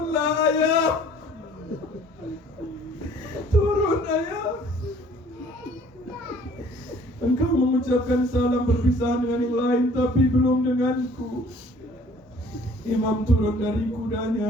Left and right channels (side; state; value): both; normal; correlation 0.55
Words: ayah. Turun ayah. Engkau mengucapkan salam perpisahan dengan yang lain, tapi belum denganku. Imam turun dari